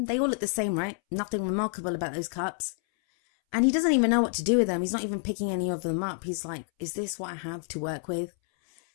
They all look the same, right? Nothing remarkable about those cups. And he doesn't even know what to do with them. He's not even picking any of them up. He's like, is this what I have to work with?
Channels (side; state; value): right; silent; 59 dB below the other